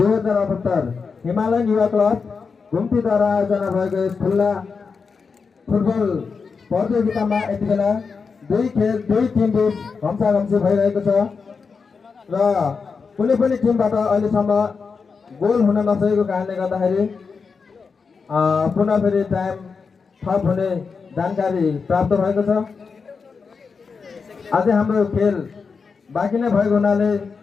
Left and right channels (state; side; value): quieter; right; 5.2 dB